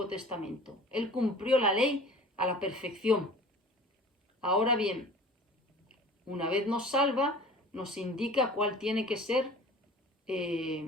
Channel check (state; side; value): normal; both; correlation 0.43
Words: Testamento. Él cumplió la ley a la perfección. Ahora bien, una vez nos salva, nos indica cuál tiene que ser